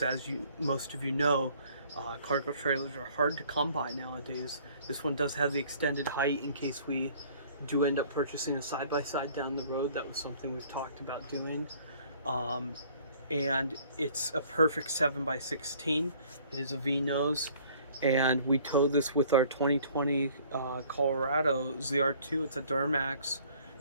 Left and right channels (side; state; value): both; inverted; correlation -0.56